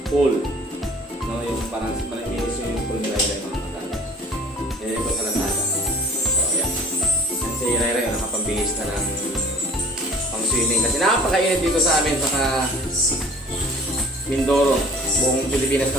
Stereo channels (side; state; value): both; normal; correlation 0.48